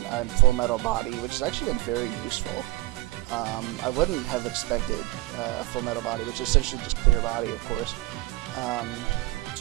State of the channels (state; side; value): quieter; left; 20.7 dB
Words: Full Metal Body, which has actually been very useful. I wouldn't have expected a Full Metal Body, which is essentially just clear body, of course,